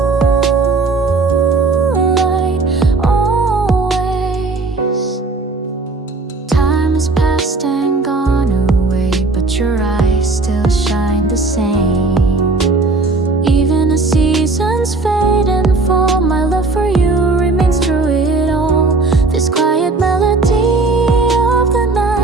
moonlight always. Time has passed and gone away, but your eyes still shine the same. Even as seasons fade and fall, my love for you remains through it all. This quiet melody of the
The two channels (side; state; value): left; quieter; 3.6 dB